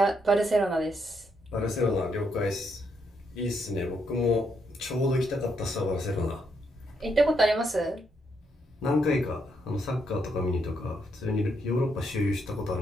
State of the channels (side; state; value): both; normal; correlation 0.77